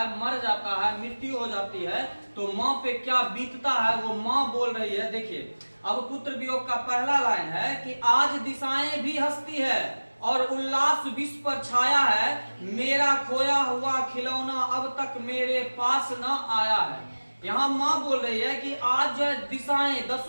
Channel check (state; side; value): inverted; both; correlation -1.00